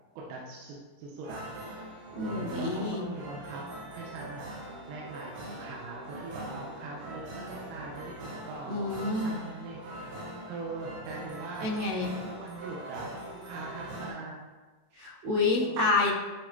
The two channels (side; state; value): left; late; 28 ms